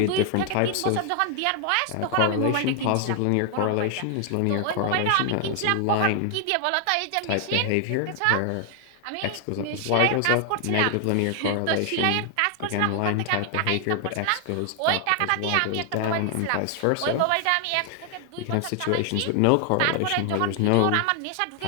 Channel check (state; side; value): different; both; correlation 0.00